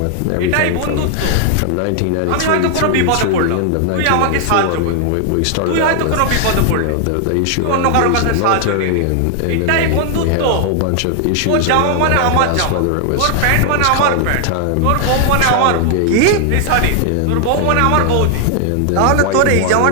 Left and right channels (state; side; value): different; both; correlation 0.00